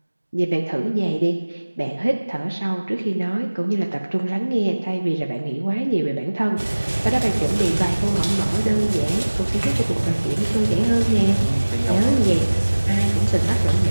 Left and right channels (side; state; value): both; inverted; correlation -1.00